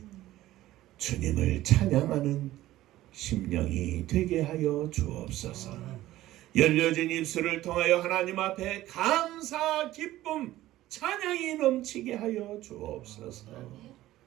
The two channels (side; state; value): left; quieter; 15.3 dB